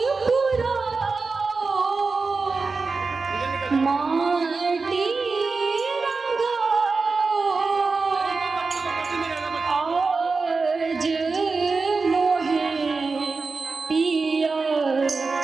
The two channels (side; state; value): left; quieter; 4.2 dB